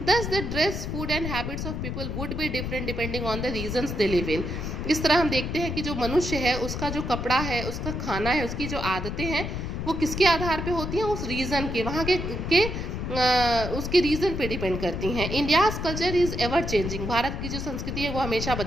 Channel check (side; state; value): left; noise; rumble, 4 dB below the sound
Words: Thus the dress, food and habits of people would be different depending on the regions they live in. इस तरह हम देखते हैं कि जो मनुष्य है उसका जो कपड़ा है, उसका खाना है, उसकी जो आदतें हैं वो किसके आधार पे होती हैं, उस रीजन के, वहाँ के उसके रीजन पे डिपेंड करती हैं। India's culture is ever changing. भारत की जो संस्कृति है वो हमेशा